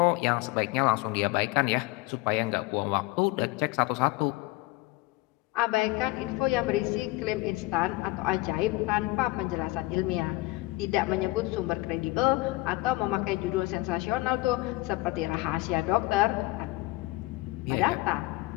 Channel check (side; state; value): right; quieter; 20.4 dB